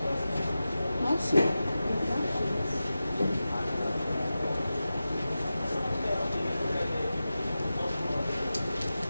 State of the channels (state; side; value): inverted; both; correlation -0.94